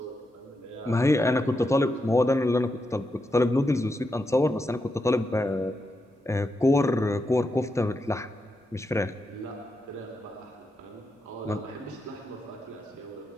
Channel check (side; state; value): both; normal; correlation 0.85